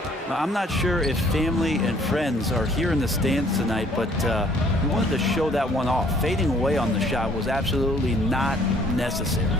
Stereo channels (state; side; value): normal; both; correlation 0.60